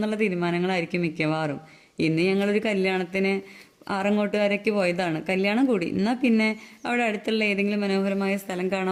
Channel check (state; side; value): identical; both; correlation 1.00